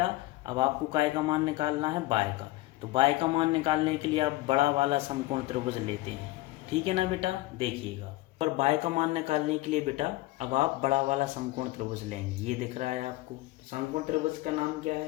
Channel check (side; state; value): right; quieter; 19.0 dB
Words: अब आपको काय का मान निकालना है y का। तो y का मान निकालने के लिए आप बड़ा वाला समकोण त्रिभुज लेते हैं। ठीक है ना बेटा, देखिएगा। और y का मान निकालने के लिए बेटा अब आप बड़ा वाला समकोण त्रिभुज लेंगे, ये दिख रहा है आपको। समकोण त्रिभुज का नाम क्या